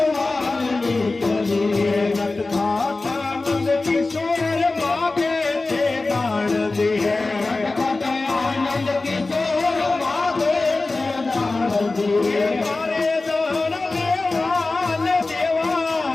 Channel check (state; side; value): quieter; right; 3.4 dB